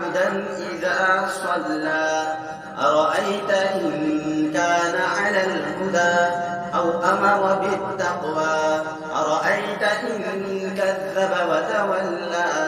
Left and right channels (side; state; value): both; identical; correlation 1.00